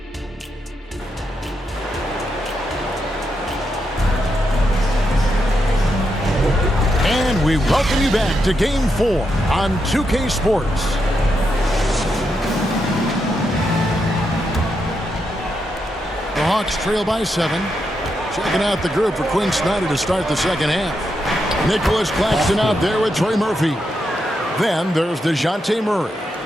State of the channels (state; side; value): normal; both; correlation 0.83